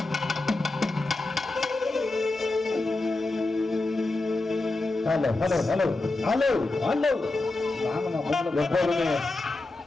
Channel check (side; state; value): right; quieter; 3.1 dB